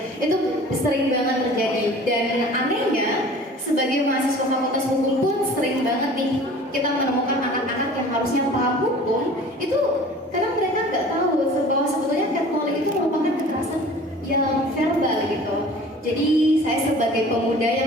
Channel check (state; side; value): normal; both; correlation 0.45